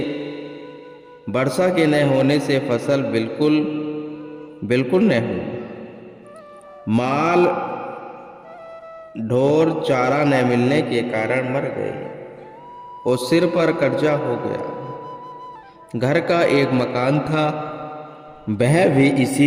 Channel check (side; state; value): both; identical; correlation 1.00